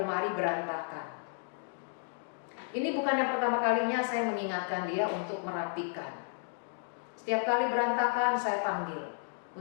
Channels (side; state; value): right; silent; 56 dB below the other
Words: berantakan. Ini bukan yang pertama kalinya saya mengingatkan dia untuk merapikan. Setiap kali berantakan saya panggil